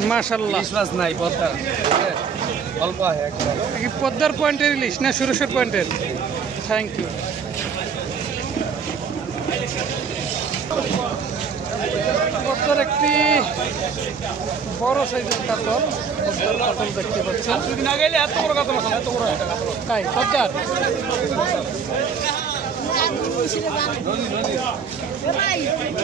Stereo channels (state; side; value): quieter; left; 6.1 dB